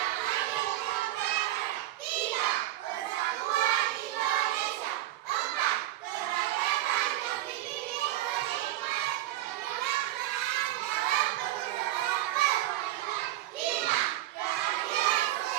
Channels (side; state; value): left; quieter; 15.0 dB